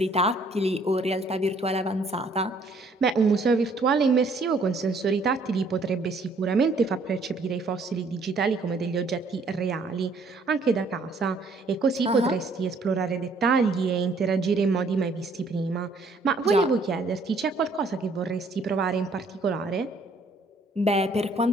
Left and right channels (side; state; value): left; quieter; 3.2 dB